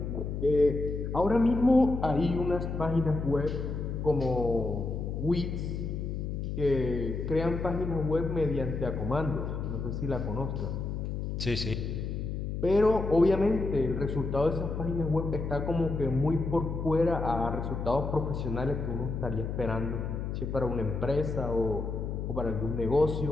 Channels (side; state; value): left; noise; hum, 4 dB below the sound